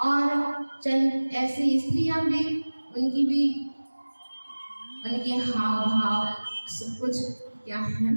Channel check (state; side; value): inverted; both; correlation -1.00